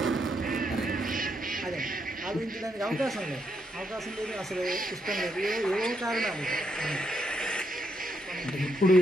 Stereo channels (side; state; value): both; normal; correlation 0.78